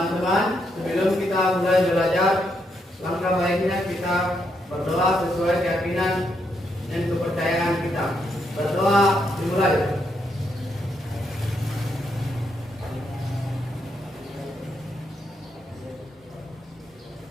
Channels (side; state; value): both; normal; correlation 0.78